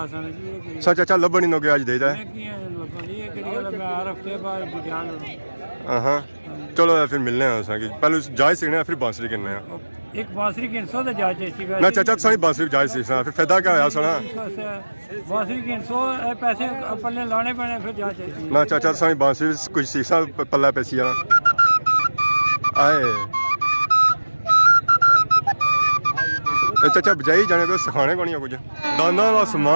सच अच्छा लभन नो गया अज देदा हाँ चलो फिर मिलने हैं पहले जायज सीखने फिर बांसुरी करने हैं एक बांसुरी की 100 तो जायज थी ना चाचा सारी बांसुरी जायज सीखना फिर फायदा क्या होया सुना बांसुरी की 100 पैसे पल्ले लाने पड़े फिर जायज ना चाचा सारी बांसुरी कुछ सीखना पल्ला पैसी आए चाचा बजाई जाने तो सिखाने को नहीं है कुछ दाना का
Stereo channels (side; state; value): both; inverted; correlation -1.00